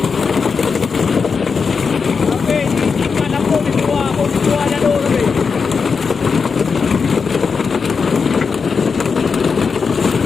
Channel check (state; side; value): quieter; right; 5.4 dB